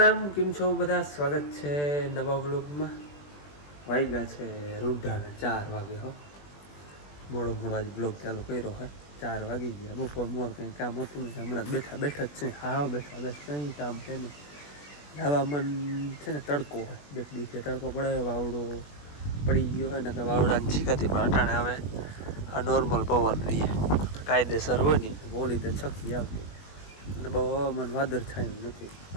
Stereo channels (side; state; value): right; late; 20 ms